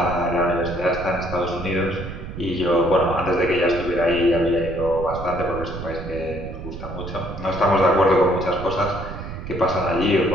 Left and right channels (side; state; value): right; noise; rumble, 9 dB below the sound